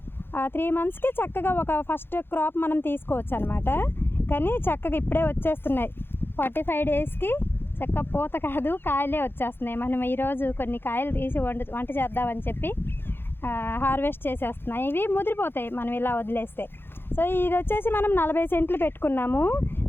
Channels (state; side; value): late; right; 0.10 ms